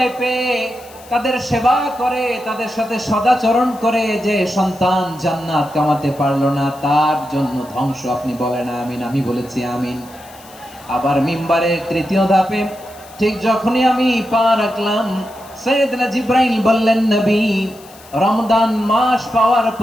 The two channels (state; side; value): noise; left; hiss, 22 dB below the sound